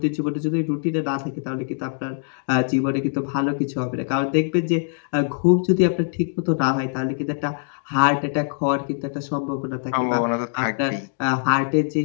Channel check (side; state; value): right; silent; digital silence